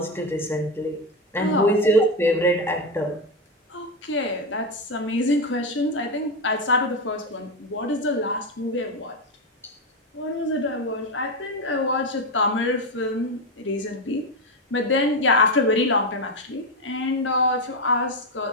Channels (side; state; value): both; normal; correlation 0.11